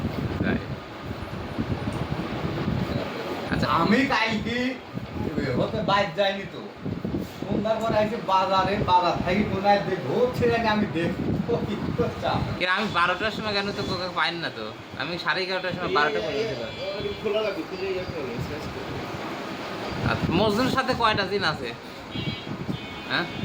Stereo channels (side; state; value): both; identical; correlation 1.00